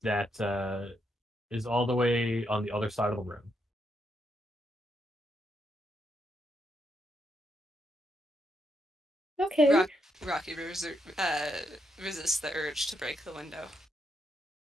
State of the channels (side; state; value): both; normal; correlation 0.79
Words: that is all the way on the other side of the room. Okay. Rocky resists the urge to break the window.